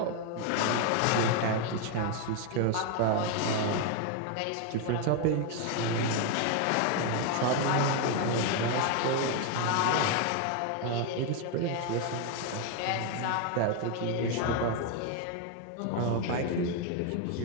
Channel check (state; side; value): different; both; correlation 0.01